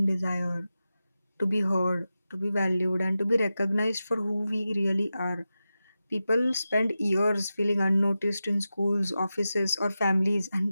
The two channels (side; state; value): both; inverted; correlation -0.93